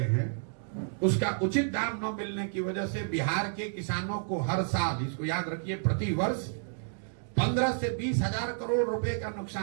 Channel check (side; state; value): left; silent; digital silence